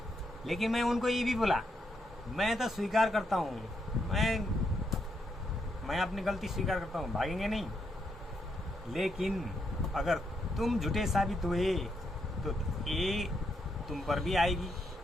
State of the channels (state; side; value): normal; both; correlation 0.79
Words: लेकिन मैं उनको ये भी बोला, मैं तो स्वीकार करता हूँ, मैं अपनी गलती स्वीकार करता हूँ, भागेंगे नहीं। लेकिन अगर तुम झूठे साबित हुए तो ये तुम पर भी आएगी,